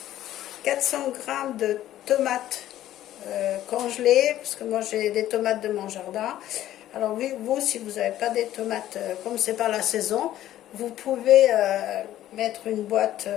400 g de tomates congelées, parce que moi j'ai des tomates de mon jardin. Alors vous, si vous n'avez pas des tomates, comme c'est pas la saison, vous pouvez mettre une boîte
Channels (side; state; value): right; quieter; 13.1 dB